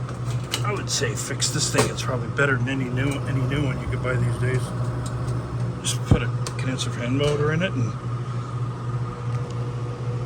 I would say fix this thing. It's probably better than any new one you could buy these days. Just put a condenser fan motor in it and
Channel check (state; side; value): identical; both; correlation 1.00